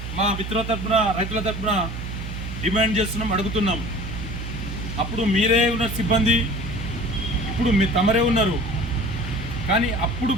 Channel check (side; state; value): right; noise; hum, 6 dB below the sound